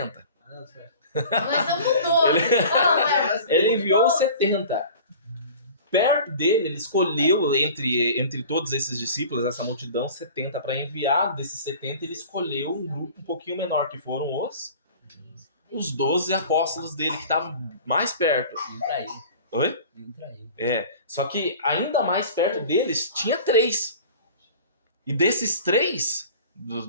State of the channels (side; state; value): both; inverted; correlation -0.42